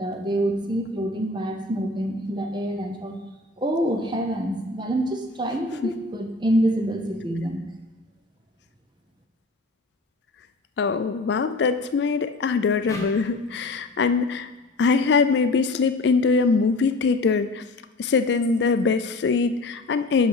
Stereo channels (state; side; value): quieter; right; 3.0 dB